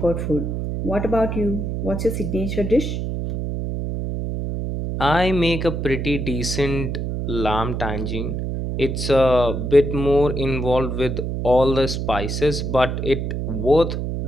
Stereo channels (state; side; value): noise; right; hum, 3 dB below the sound